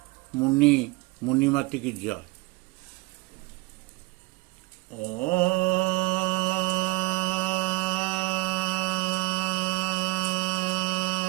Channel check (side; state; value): left; quieter; 23.0 dB